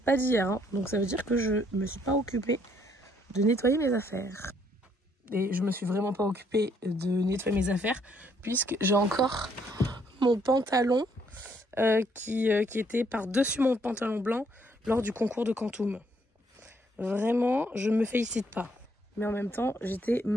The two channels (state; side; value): normal; both; correlation 0.68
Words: pas d'hier. Hein. Donc ça veut dire que je me suis pas occupée de nettoyer mes affaires. Et je me suis vraiment pas occupée de nettoyer mes affaires puisque j'ai encore mon pantalon qui était par-dessus mon pantalon blanc lors du concours de Quantum. Vraiment, je me félicite pas. Mais en même temps, j'étais